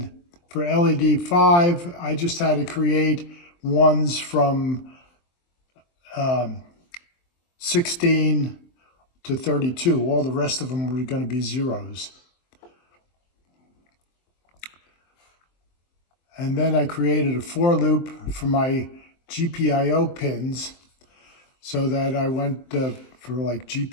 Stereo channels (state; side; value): late; right; 23 ms